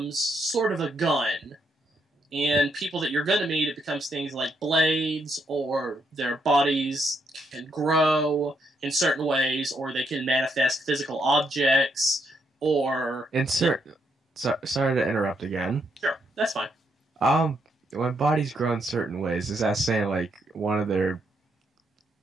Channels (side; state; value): both; normal; correlation 0.76